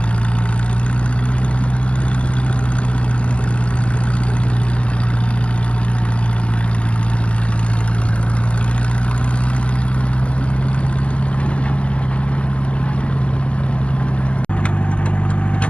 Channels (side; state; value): right; late; 0.057 ms